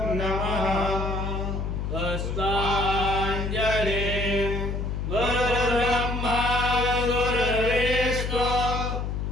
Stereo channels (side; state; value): left; noise; hum, 2 dB below the sound